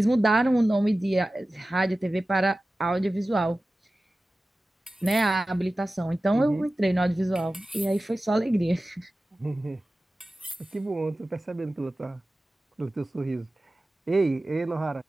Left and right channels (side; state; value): both; normal; correlation 0.96